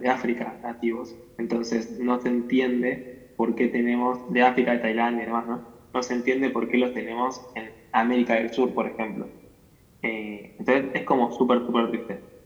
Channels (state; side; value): identical; both; correlation 1.00